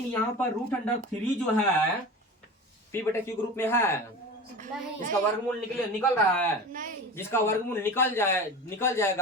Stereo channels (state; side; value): normal; both; correlation 0.32